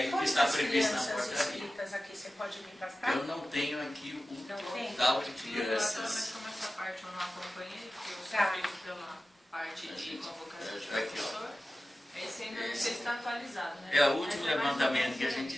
o que está previsto na portaria. Aqui, você pode vir para cá? Eu não tenho aqui o total de crianças. Mas como essa parte eu não acompanhei, porque eu Tá. sou feito pela parte de convocação de aqui, professor. Esse ainda não sei se está atualizado, né? É o último Mas levantamento que a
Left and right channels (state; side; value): normal; both; correlation 0.95